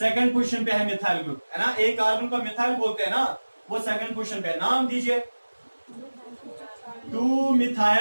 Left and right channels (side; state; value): both; inverted; correlation -1.00